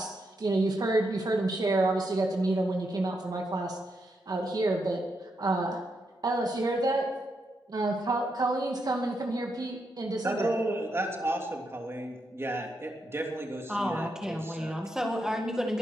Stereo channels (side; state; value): both; normal; correlation 0.82